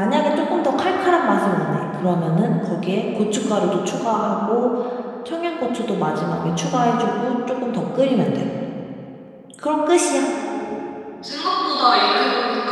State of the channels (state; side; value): identical; both; correlation 1.00